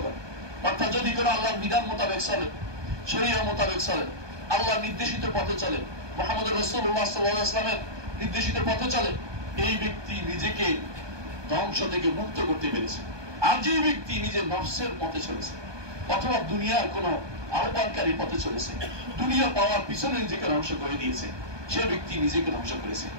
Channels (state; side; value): late; left; 1.2 ms